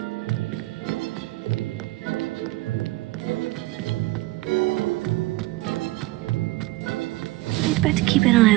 I'd better keep an eye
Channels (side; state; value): left; quieter; 19.8 dB